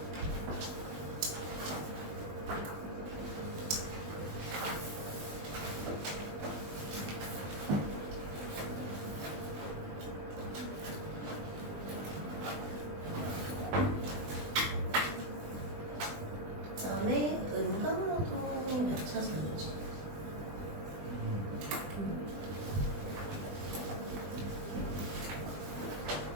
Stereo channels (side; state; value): left; late; 20 ms